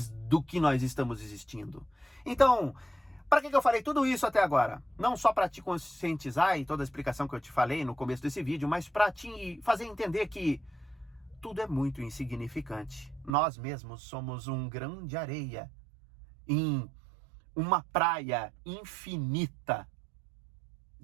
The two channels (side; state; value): left; drops out; at 13.3 s